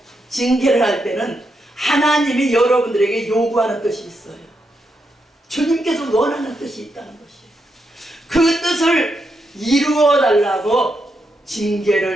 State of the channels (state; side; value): normal; both; correlation 0.83